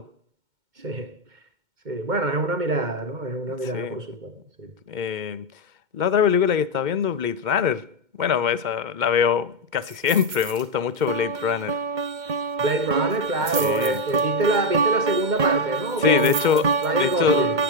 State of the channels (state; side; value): late; left; 2.2 ms